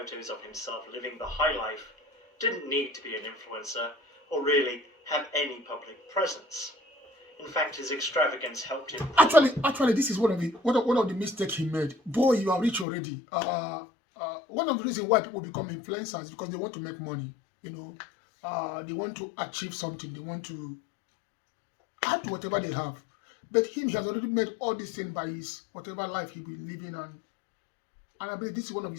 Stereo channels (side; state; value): right; drops out; at 12.9 s